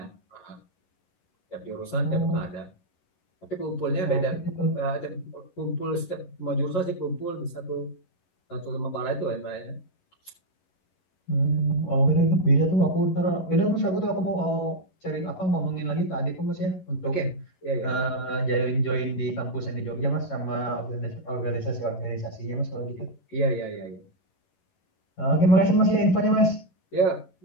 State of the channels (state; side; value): late; right; 11 ms